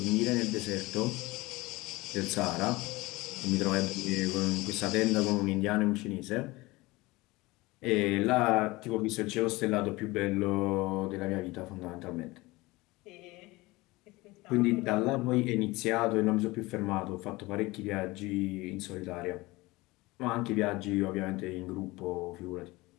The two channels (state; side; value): quieter; right; 21.5 dB